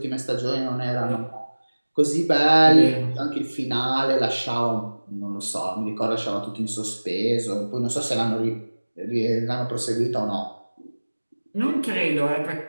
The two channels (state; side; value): inverted; both; correlation -1.00